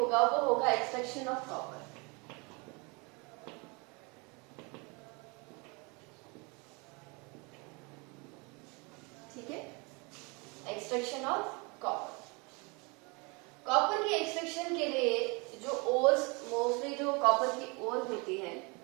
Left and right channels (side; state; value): left; quieter; 29.4 dB